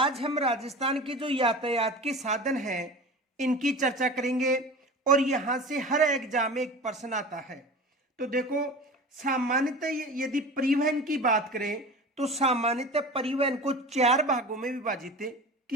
हम राजस्थान के जो यातायात के साधन हैं इनकी चर्चा करेंगे और यहाँ से हर एग्जाम में एक प्रश्न आता है। तो देखो, सामान्यतः यदि परिवहन की बात करें तो सामान्यतः परिवहन को 4 भागों में विभाजित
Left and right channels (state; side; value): normal; both; correlation 0.35